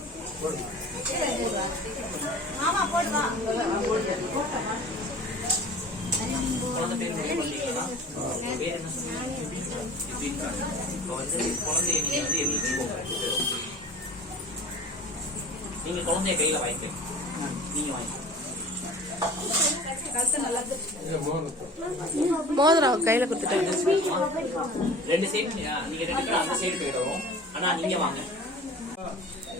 மாமா போடுவா. குழந்தை பேர் பேர் என்ன சொன்னீங்க? குழந்தைய நீங்க எழுதிக்கோங்க. நீங்க குழந்தைய கையில வாங்கிக்க. நீங்க வாங்கிக்க. மோதிரம் கையில கொடுத்துட்டாங்க. ரெண்டு சைடு நீங்க ரெண்டு பேரும் அந்த சைடு போயிடுவோம். ஆனா நீங்க வாங்க.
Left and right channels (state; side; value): normal; both; correlation 0.42